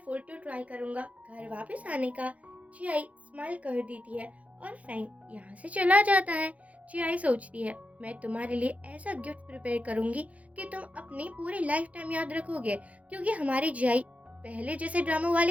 फुल टू ट्राई करूंगा घर वापस आने का। चियाई स्माइल कर देती है और फेंग यहाँ से चला जाता है। चियाई सोचती है, मैं तुम्हारे लिए ऐसा गिफ्ट प्रिपेयर करूंगी कि तुम अपनी पूरी लाइफ टाइम याद रखोगे, क्योंकि हमारी जियाई पहले जैसे ड्रामा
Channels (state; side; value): late; left; 0.067 ms